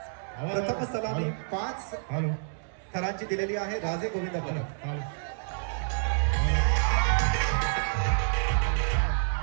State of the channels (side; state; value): left; silent; digital silence